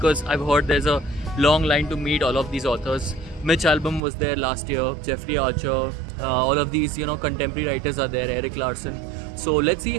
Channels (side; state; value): left; drops out; at 4.0 s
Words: I've heard there's a long line to meet all of these authors. Mitch Albom was there last year, Jeffrey Archer, all of these contemporary writers are there, Eric Larson. So let's see